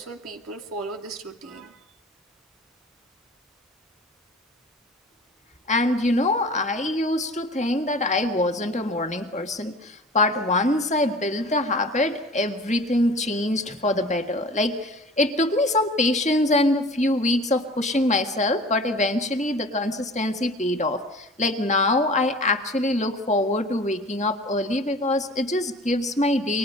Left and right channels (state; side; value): normal; both; correlation 0.42